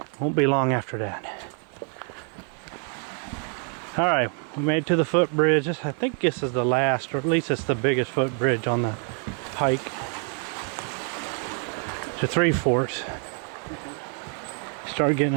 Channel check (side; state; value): left; quieter; 38.4 dB